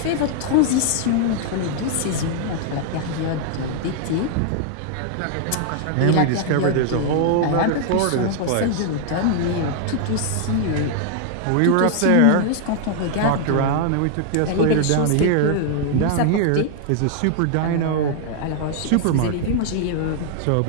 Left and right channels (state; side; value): different; both; correlation 0.00